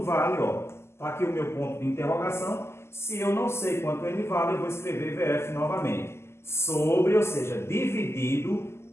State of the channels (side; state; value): right; late; 0.12 ms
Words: vale, ó. Tá aqui o meu ponto de interrogação. Se eu não sei quanto ele vale, eu vou escrever VF novamente. Sobre, ou seja, dividido